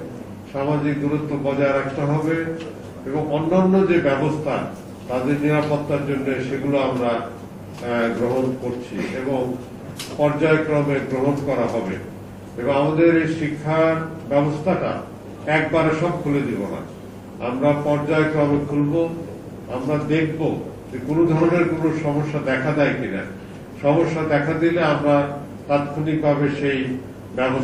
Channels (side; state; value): both; identical; correlation 1.00